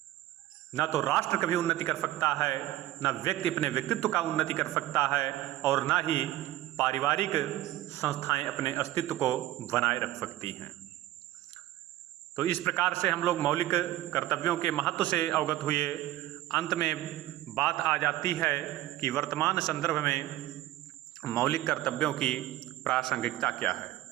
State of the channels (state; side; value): quieter; left; 15.1 dB